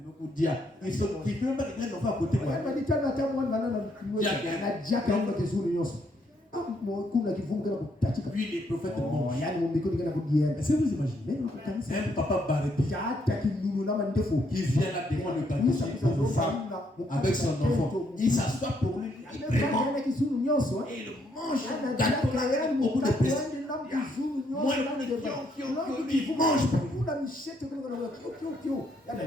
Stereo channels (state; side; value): normal; both; correlation 0.72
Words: dit, ils sont qui ne peuvent pas dire l'enfant à côté. Lui, les prophètes mangent. Est-ce que vous imaginez un papa Barbie qui vient là devant le gâteau pour femme avec son enfant. Il s'assoit pour lui. Il vraiment et il mange le gâteau au bout de plaisir. Moi, il mange. Quand